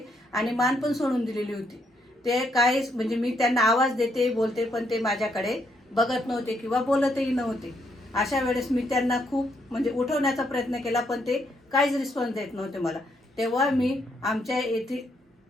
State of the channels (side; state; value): both; normal; correlation 0.75